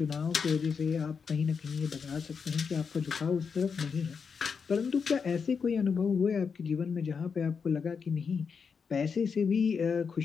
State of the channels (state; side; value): quieter; right; 5.9 dB